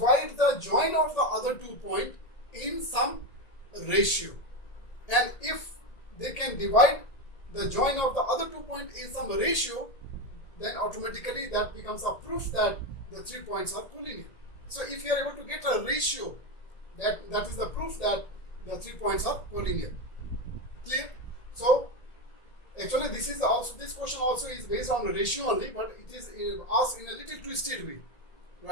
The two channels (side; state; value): right; late; 1.8 ms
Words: the join of the other 2 points in some ratio. And if they can divide the join of the other 2 points in some ratio, then automatically that becomes a proof that the 3 points are collinear. So if you are able to get a ratio, that is the proof that the 3 points are collinear. Clear? So actually this question also is based on a ratio only, but it is asked in a little twisted way,